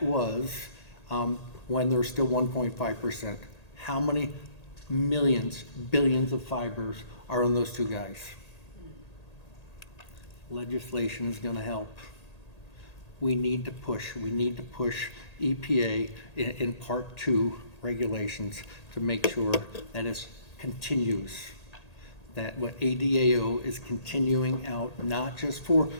when there's still 1.5%, how many millions, billions of fibers are on those two guys? Legislation is going to help. We need to push EPA in Part 2 regulations to make sure that it continues, that what ADAO is continuing out, not just for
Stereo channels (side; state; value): right; late; 1.8 ms